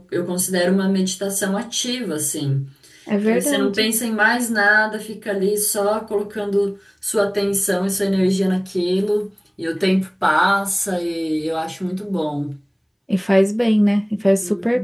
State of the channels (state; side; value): identical; both; correlation 1.00